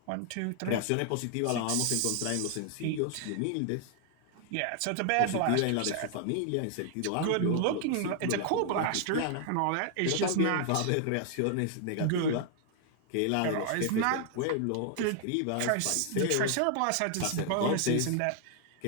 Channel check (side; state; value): both; different; correlation 0.00